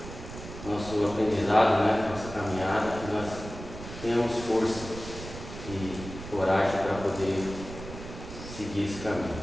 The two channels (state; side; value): noise; right; rumble, 12 dB below the sound